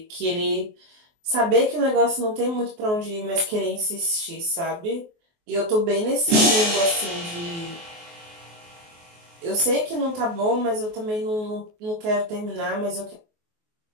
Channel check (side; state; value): left; late; 23 ms